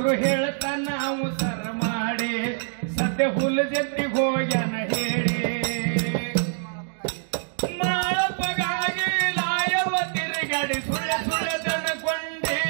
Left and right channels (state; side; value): silent; left; digital silence